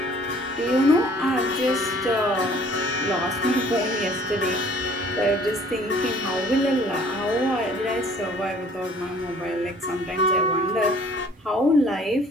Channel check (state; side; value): normal; both; correlation 0.55